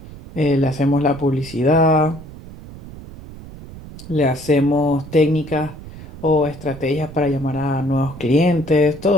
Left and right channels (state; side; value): noise; right; rumble, 15 dB below the sound